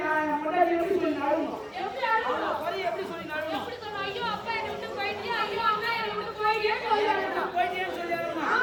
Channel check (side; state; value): both; identical; correlation 1.00